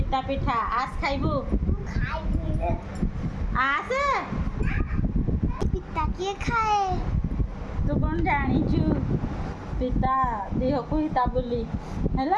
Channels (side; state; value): both; identical; correlation 1.00